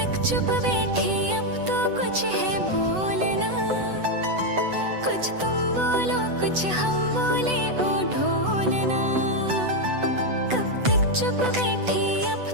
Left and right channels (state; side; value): late; left; 8.0 ms